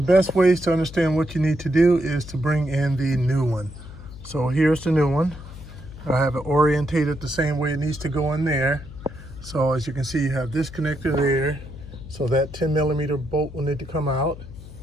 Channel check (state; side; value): noise; left; hum, 15 dB below the sound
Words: the best ways to understand what you need to do is to bring in the new one. So here's the new one. I have it orientated the same way it needs to go in there. So as you can see, you have this connector there. So that 10mm bolt will need to come out.